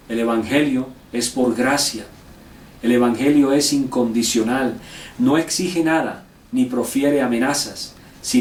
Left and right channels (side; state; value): both; identical; correlation 1.00